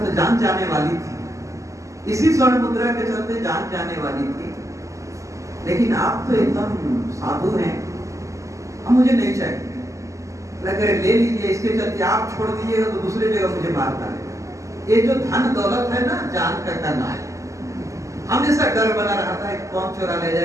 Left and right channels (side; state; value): left; late; 0.16 ms